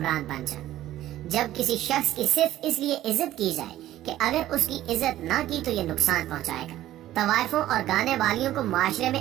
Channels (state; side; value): quieter; left; 13.9 dB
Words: बन जाए, जब किसी शख्स की सिर्फ इसलिए इज्जत की जाए कि अगर उसकी इज्जत ना की तो ये नुकसान पहुँचाएगा, तवाइफों और गाने वालियों को माशरे में